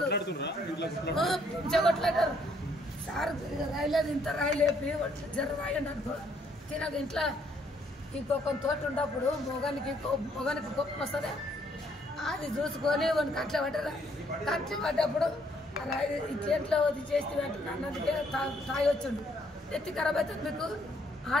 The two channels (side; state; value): both; normal; correlation 0.68